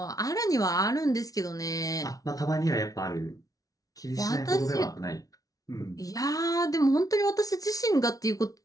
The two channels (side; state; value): right; late; 0.18 ms